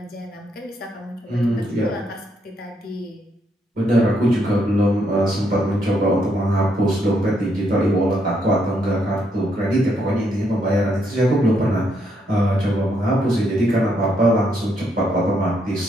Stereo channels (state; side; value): normal; both; correlation 0.75